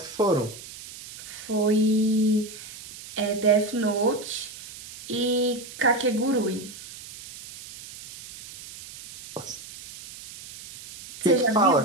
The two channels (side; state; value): right; noise; hiss, 15 dB below the sound